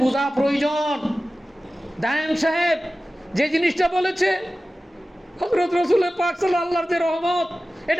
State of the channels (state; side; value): normal; both; correlation 0.95